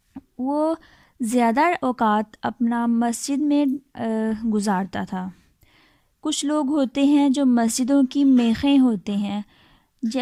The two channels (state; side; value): identical; both; correlation 1.00